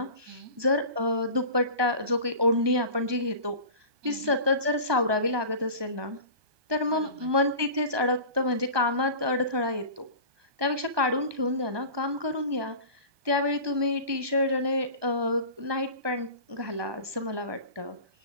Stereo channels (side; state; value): left; late; 1.2 ms